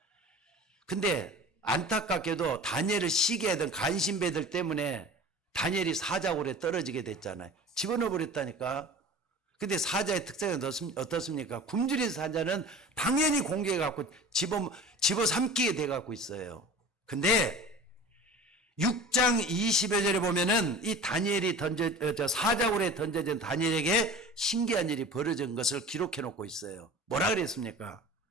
근데 안타깝게도 다니엘을 시기하던 간신배들 때문에 다니엘이 사자굴에 떨어지게 됐잖아요. 집어넣어 버렸다니까. 근데 사자의 특성이 어떻습니까? 굶주린 사자는 당연히 공격해갖고 집어삼키게 돼갖고 있어요. 근데 6장 20여 절에 보면은 이 다니엘이 사자굴에 던져진 다니엘에게 신기한 일이 벌어진 것을 기록해 놓고 있어요. 뭐라 그랬습니까?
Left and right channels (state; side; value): normal; both; correlation 0.38